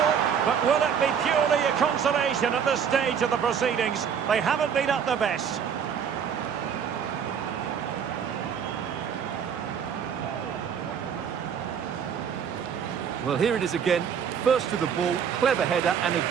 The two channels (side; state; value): left; quieter; 7.5 dB